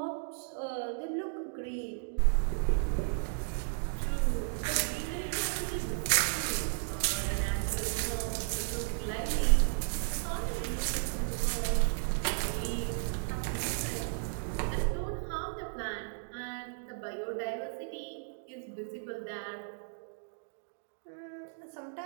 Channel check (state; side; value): silent; left; digital silence